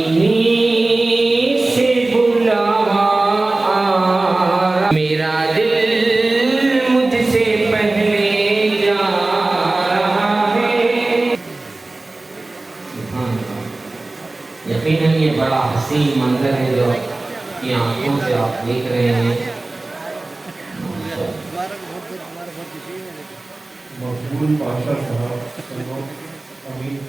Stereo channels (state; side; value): quieter; left; 3.1 dB